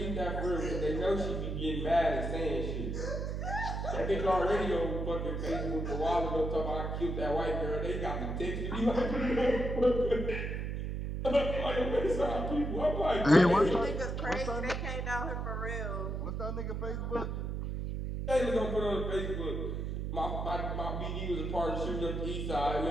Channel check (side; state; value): right; noise; hum, 3 dB below the sound